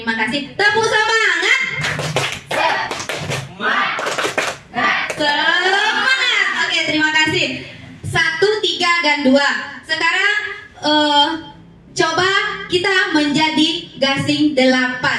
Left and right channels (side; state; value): both; identical; correlation 1.00